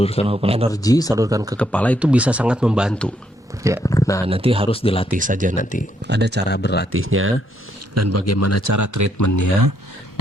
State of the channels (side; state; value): both; normal; correlation 0.74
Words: apa? Energi salurkan ke kepala itu bisa sangat membantu. Ya. Nah, nanti harus dilatih saja nanti. Ada cara berlatihnya dan bagaimana cara treatmentnya,